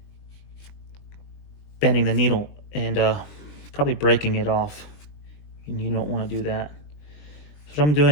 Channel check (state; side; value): late; right; 20 ms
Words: bending the needle and probably breaking it off, and you don't want to do that. So what I'm